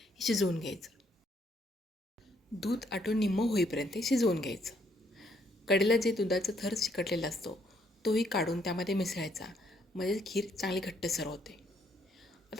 शिजवून घ्यायचं. दूध आटून निम्मं होईपर्यंत शिजवून घ्यायचं. कडेला जे दुधाचा थर चिकटलेला असतो तोही काढून त्यामध्ये मिसळायचा, म्हणजे खीर चांगली घट्टसर होते.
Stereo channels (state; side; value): normal; both; correlation 0.70